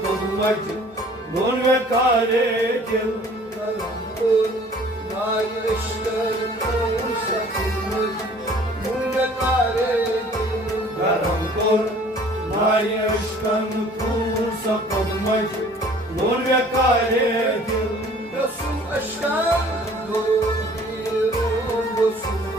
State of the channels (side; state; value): both; normal; correlation 0.52